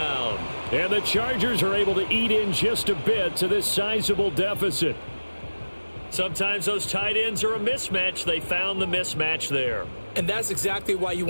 And the Chargers are able to eat in just a bit to this sizable deficit. Sometimes those tight ends are a mismatch. They found the mismatch there. And that's exactly why you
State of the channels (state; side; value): inverted; both; correlation -1.00